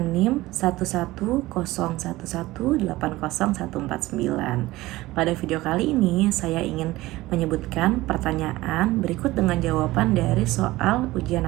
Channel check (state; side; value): quieter; left; 18.3 dB